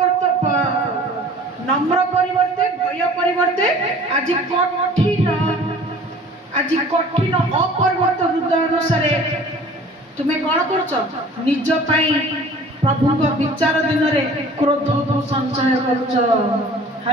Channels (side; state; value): both; normal; correlation 0.47